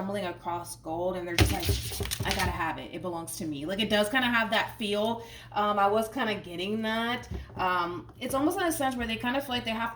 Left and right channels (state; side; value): identical; both; correlation 1.00